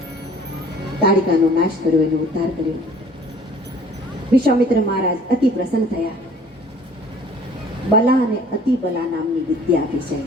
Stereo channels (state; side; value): normal; both; correlation 0.52